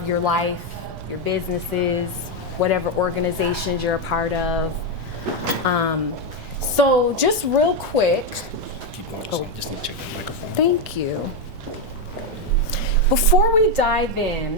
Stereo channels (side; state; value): both; normal; correlation 0.05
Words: your life, your businesses, whatever organizations you're a part of. So just real quick. Keep going, so just need to check that microphone. Thank you. Before we dive